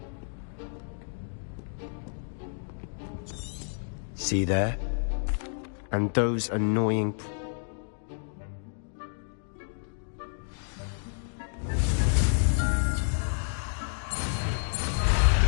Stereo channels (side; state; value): right; silent; digital silence